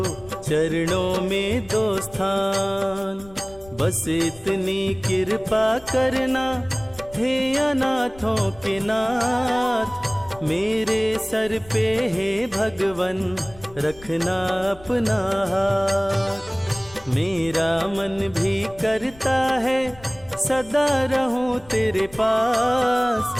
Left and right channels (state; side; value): noise; left; rumble, 22 dB below the sound